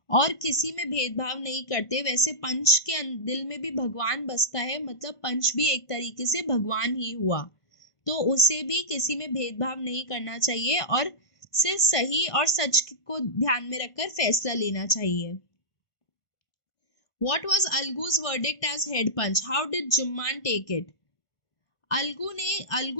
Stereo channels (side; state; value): right; late; 1.5 ms